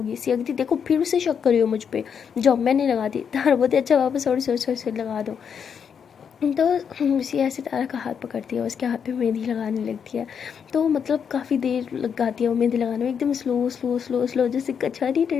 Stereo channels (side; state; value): right; quieter; 7.2 dB